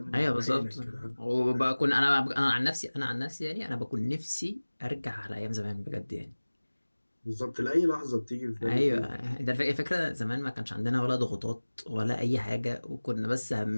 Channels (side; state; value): both; inverted; correlation -1.00